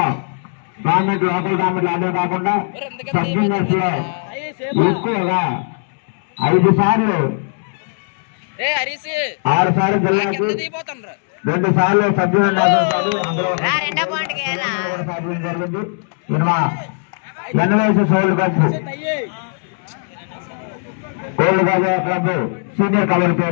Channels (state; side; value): silent; right; 67 dB below the other